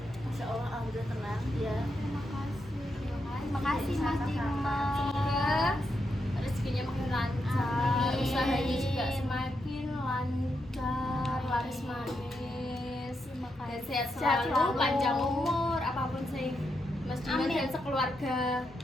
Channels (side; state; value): both; normal; correlation 0.83